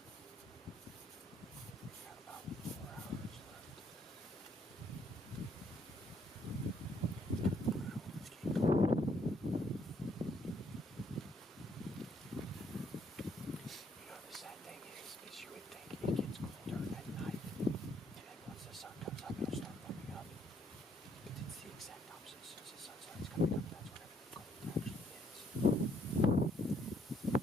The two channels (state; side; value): normal; both; correlation 0.69